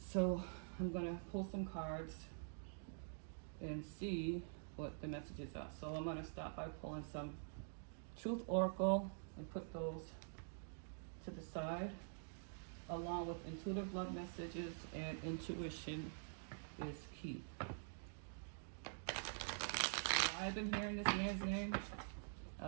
I'm gonna pull some cards and see what the messages are. So I'm gonna start by pulling some Truth Oracle and put those to the side, along with intuitive love messages and intuition is key. I've been hearing this man's name, I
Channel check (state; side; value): silent; left; digital silence